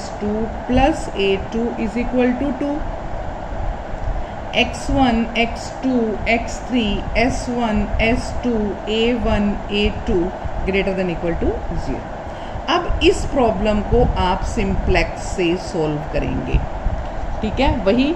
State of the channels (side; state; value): both; identical; correlation 1.00